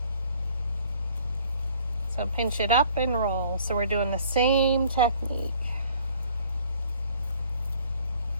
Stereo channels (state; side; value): inverted; both; correlation -0.55